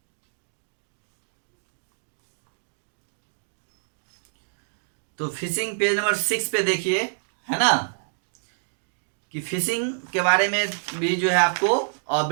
तो फिशिंग पेज नंबर 6 पे देखिए, है ना, कि फिशिंग के बारे में भी जो है आपको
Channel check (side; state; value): left; silent; digital silence